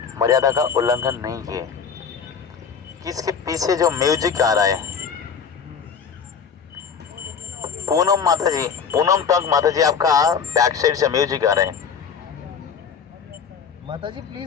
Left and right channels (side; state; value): right; quieter; 6.5 dB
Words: मर्यादा का उल्लंघन नहीं किए। किसके पीछे जो म्यूजिक आ रहा है? पूनम माता जी, पूनम टंक माता जी, आपका बैक साइड से म्यूजिक आ रहा है। माता जी